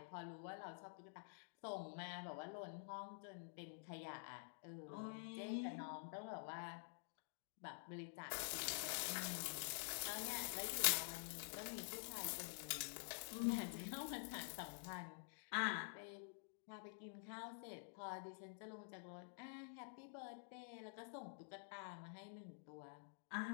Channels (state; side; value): silent; right; digital silence